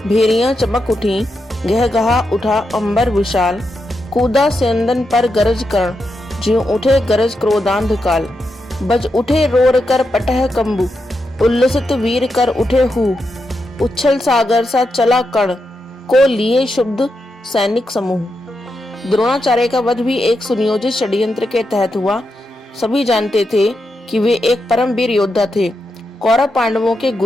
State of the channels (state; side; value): normal; both; correlation 0.85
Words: भेरियां चमक उठी, गह गहा उठा अंबर विशाल, कूदा सेंदन पर गरज कर्ण, ज्यों उठे गरज क्रोधांध काल, बज उठे रोर कर पटह कंबु, उल्लसित वीर कर उठे हु, उच्छल सागर सा चला कर्ण, को लिए शुद्ध सैनिक समूह। द्रोणाचार्य का वध भी एक सुनियोजित षड्यंत्र के तहत हुआ। सभी जानते थे कि वे एक परम वीर योद्धा थे, कौरव पांडवों के